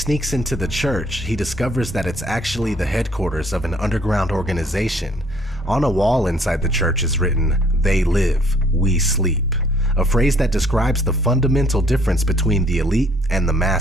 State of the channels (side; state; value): both; normal; correlation 0.61